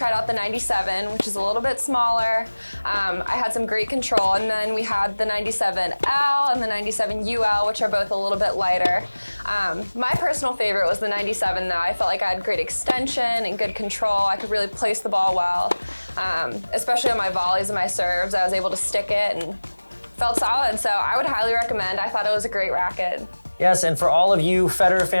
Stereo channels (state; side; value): inverted; both; correlation -1.00